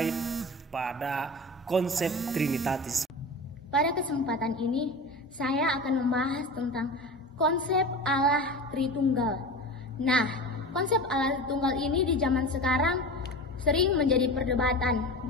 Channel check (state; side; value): normal; both; correlation 0.31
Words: pada konsep trinitatis. Pada kesempatan ini, saya akan membahas tentang konsep Allah Tritunggal. Nah, konsep Allah Tritunggal ini di zaman sekarang sering menjadi perdebatan.